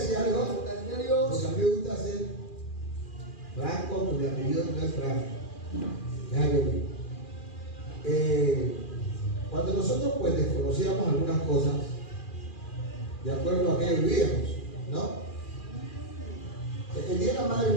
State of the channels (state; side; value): late; right; 2.4 ms